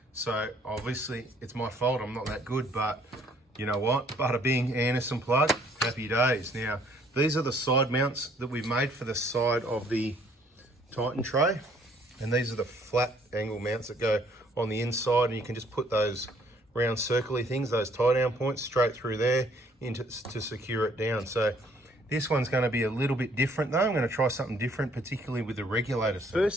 So obviously it's my fault, I'm not that good, but you know what? Bada bing, Anderson plug, happy days. Now, these are the side mounts that we've made for the side of the Titan tray. And these are the flat angle mounts that go on the inside, and you can just put those round circly things, those tie down points, straight through there to secure it down. So this one's going to be a little bit different though. I'm going to try something different, particularly with the regulator.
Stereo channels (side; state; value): both; normal; correlation 0.62